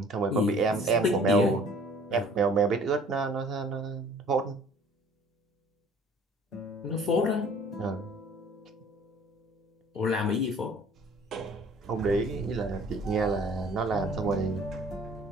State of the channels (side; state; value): both; normal; correlation 0.52